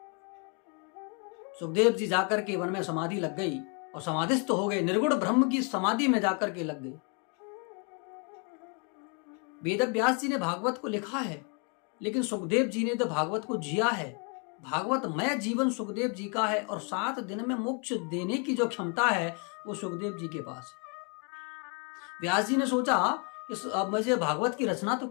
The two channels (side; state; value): right; quieter; 36.9 dB